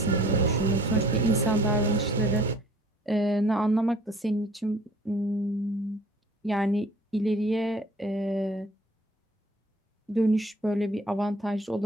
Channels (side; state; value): both; normal; correlation 0.53